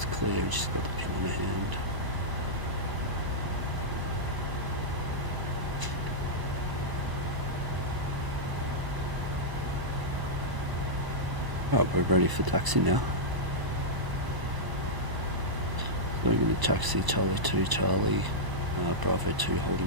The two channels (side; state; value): left; late; 1.0 ms